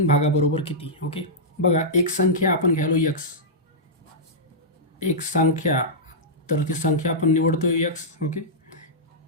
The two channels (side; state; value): both; normal; correlation -0.12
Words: भागाबरोबर किती? ओके, बघा एक संख्या आपण घ्यायलो x, एक संख्या, तर ती संख्या आपण निवडतोय x. ओके,